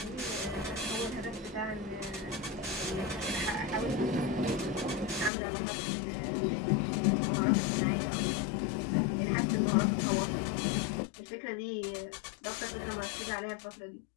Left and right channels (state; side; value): drops out; right; at 5.3 s